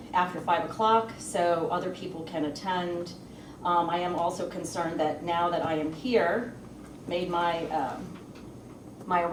after 5 o'clock so other people can attend. I am also concerned that now that I am here, made my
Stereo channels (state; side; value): identical; both; correlation 1.00